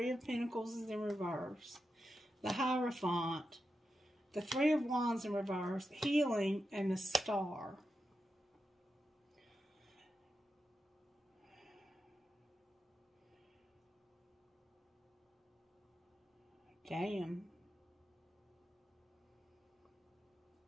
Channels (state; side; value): normal; both; correlation 0.89